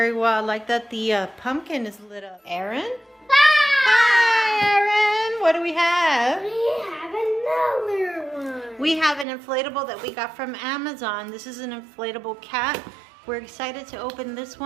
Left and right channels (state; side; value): drops out; left; at 9.2 s